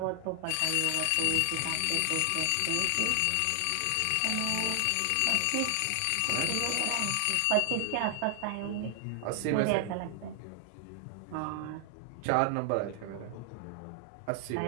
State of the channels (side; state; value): both; different; correlation 0.00